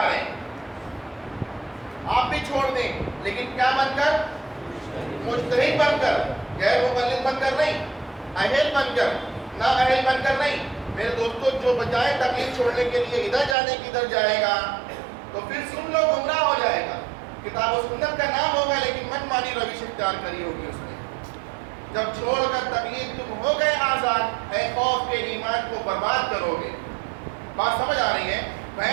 رہے. آپ بھی چھوڑ دیں لیکن کیا بن کر؟ مجتہد بن کر. غیر مقلد بن کر نہیں، اہل بن کر. نہ اہل بن کر نہیں. میرے دوستوں جو بجائے تقلید چھوڑنے کے لیے ادھر جانے کی ادھر جائے گا تو پھر سن لو گمراہ ہو جائے گا. کتاب و سنت کا نام ہوگا لیکن من مانی روش اختیار کری ہوگی اس نے. جب چھوڑ کر تقلید تم ہو گئے آزاد، اے خوف کے ایمان کو برباد کرو گے. بات سمجھ آ رہی ہے؟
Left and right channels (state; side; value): drops out; left; at 13.6 s